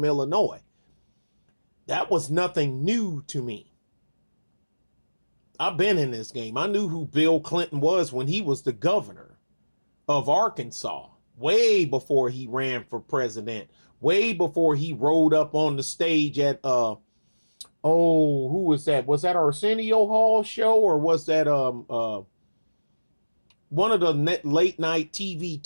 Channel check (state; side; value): inverted; both; correlation -1.00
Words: Illinois. That was nothing new to me. I've been in this game. I knew who Bill Clinton was when he was the governor of Arkansas, way before he ran for president, way before he rode up on the stage at who was that? Was that Arsenio Hall show, or was that one of the late night TV